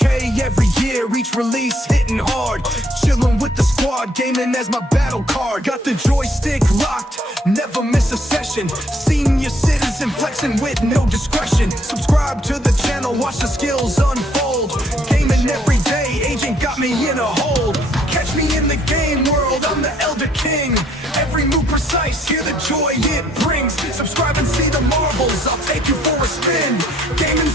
every year, each release hitting hard. Chilling with the squad, gaming as my battle card. Got the joystick locked, never miss a session. Senior citizen flexing with no discretion. Subscribe to the channel, watch the skills unfold. Gaming every day, agent got me in a hold. Catch me in the game world, I'm the Elder King. Every move precise, hear the joy it brings. Subscribe and see the marvels, I'll take you for a spin.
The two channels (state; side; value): normal; both; correlation 0.66